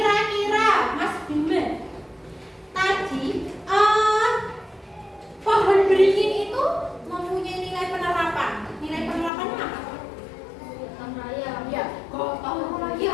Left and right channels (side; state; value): right; drops out; at 9.3 s